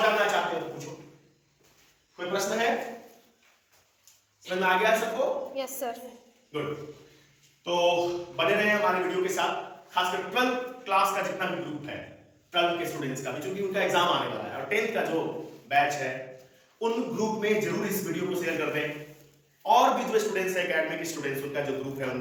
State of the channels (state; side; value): identical; both; correlation 1.00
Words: जानना चाहते हो तो पूछो। कोई प्रश्न है? समझ में आ गया सबको? Yes sir. गुड। तो बने रहे हमारे वीडियो के साथ। खासकर 12th क्लास का जितना भी ग्रुप है, 12 के स्टूडेंट्स का भी, क्योंकि उनका एग्जाम आने वाला है, और 10th का जो बैच है उन ग्रुप में जरूर इस वीडियो को शेयर कर दें। और भी जो स्टूडेंट्स है, एकेडमिक स्टूडेंट्स, उनका जो ग्रुप है